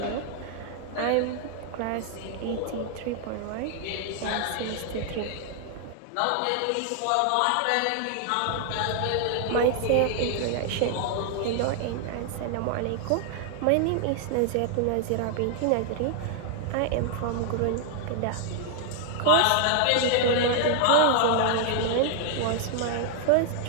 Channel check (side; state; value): both; different; correlation 0.00